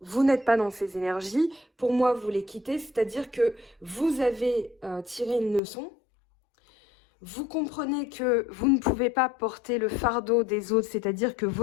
vous n'êtes pas dans ces énergies. Pour moi, vous les quittez, c'est-à-dire que vous avez tiré une leçon. Vous comprenez que vous ne pouvez pas porter le fardeau des autres, c'est-à-dire que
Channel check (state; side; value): drops out; right; at 5.6 s